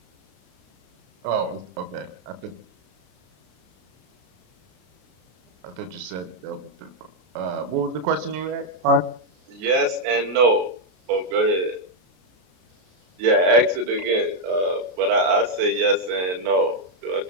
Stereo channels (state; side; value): late; left; 33 ms